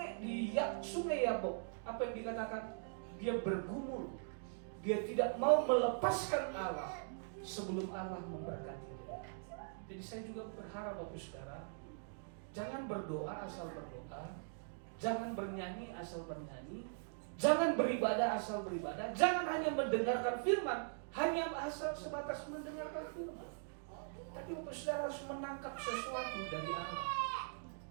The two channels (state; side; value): silent; left; digital silence